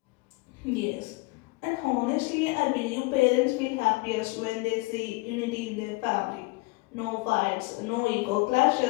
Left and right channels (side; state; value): right; quieter; 24.2 dB